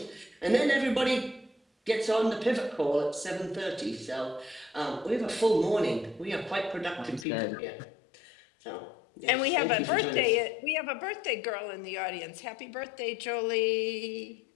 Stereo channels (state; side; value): drops out; right; at 7.2 s